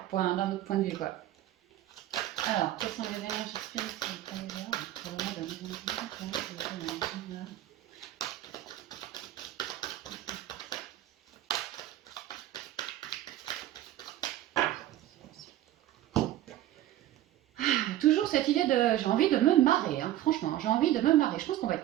d'un autre point de vue, quoi. Alors, quelles sont les énergies spirituelles pour les arbres pour le mois de 2021? Toujours cette idée de... J'ai envie de me marrer, hein, franchement, j'ai envie de me marrer. Je pense qu'on va être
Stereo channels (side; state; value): left; quieter; 13.7 dB